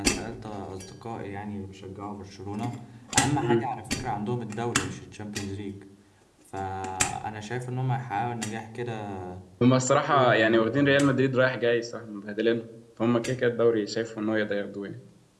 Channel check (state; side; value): identical; both; correlation 1.00